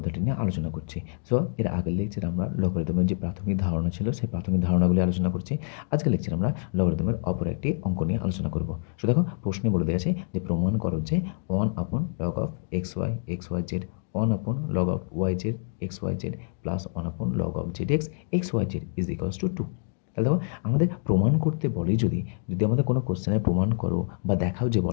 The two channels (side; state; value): right; silent; 60 dB below the other